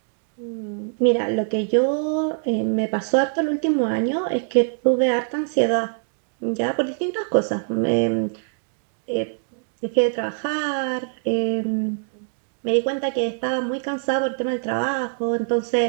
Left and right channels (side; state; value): left; silent; digital silence